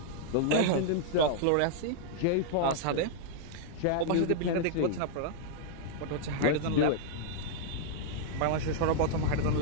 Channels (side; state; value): both; different; correlation -0.01